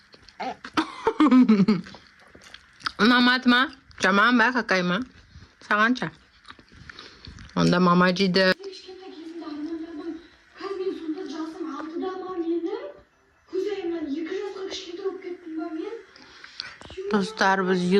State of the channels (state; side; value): identical; both; correlation 1.00